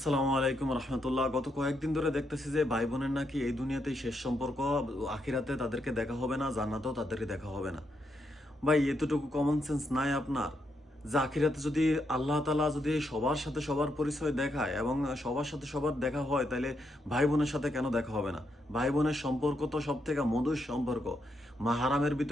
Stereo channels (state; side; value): normal; both; correlation 0.80